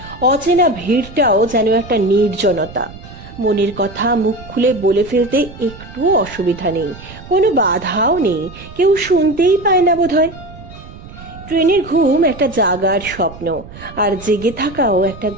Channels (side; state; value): right; noise; rumble, 16 dB below the sound